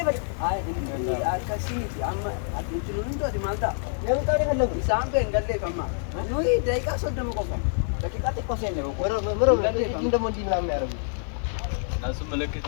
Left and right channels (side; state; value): right; silent; digital silence